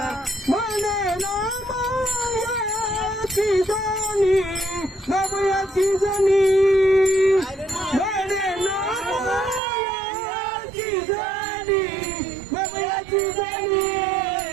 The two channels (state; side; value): drops out; left; at 9.6 s